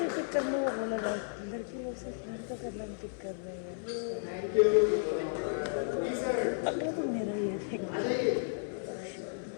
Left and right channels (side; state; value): right; silent; 55 dB below the other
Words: पिक करने को बोला था, लड़की लोग से लड़का करना पिक कर रहे हैं। अगला तो मेरा ही है।